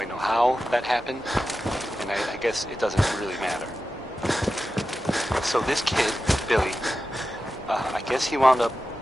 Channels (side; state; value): both; normal; correlation 0.92